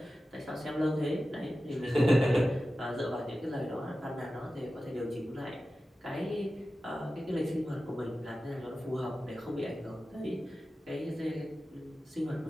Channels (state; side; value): normal; both; correlation 0.94